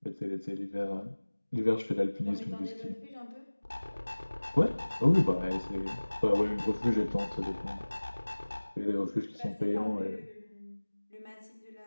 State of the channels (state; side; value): inverted; both; correlation -1.00